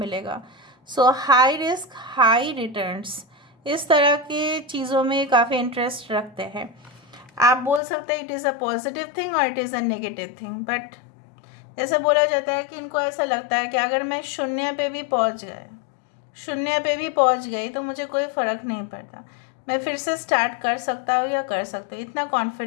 सो हाई रिस्क हाई रिटर्न्स, इस तरह की चीज़ों में काफ़ी इंटरेस्ट रखते हैं। आप बोल सकते हैं it is a positive thing और it is a negative thing, but जैसे बोला जाता है कि इनको ऐसा लगता है कि अगर मैं शून्य पे भी पहुंच गई तो मुझे कोई फ़र्क नहीं पड़ता, मैं फिर से स्टार्ट कर सकता हूँ या कर सकता हूँ, इतना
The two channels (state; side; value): drops out; right; at 7.8 s